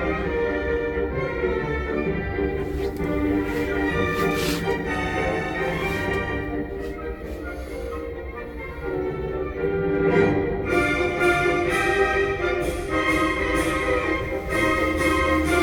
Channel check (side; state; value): both; identical; correlation 1.00